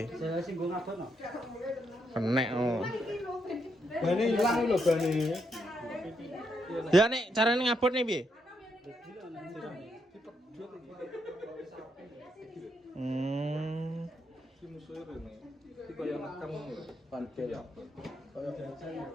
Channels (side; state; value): both; normal; correlation 0.79